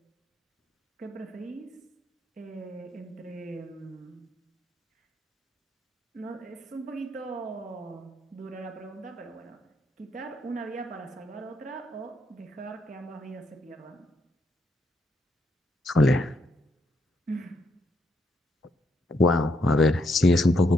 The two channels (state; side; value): normal; both; correlation 0.76